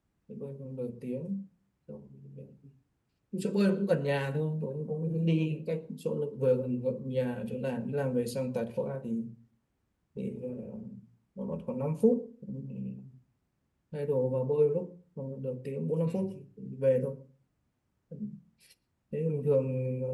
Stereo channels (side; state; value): both; identical; correlation 1.00